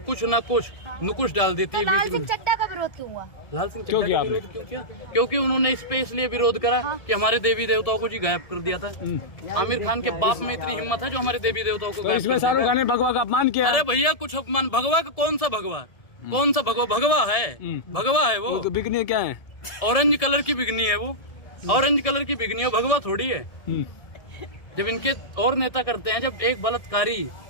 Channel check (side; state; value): right; late; 1.7 ms